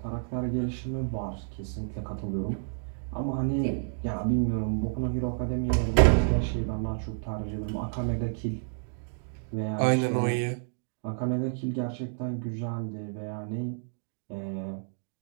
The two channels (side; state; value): left; silent; digital silence